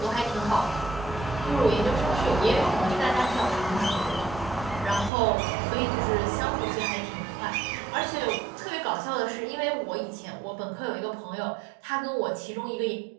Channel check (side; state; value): left; drops out; at 5.1 s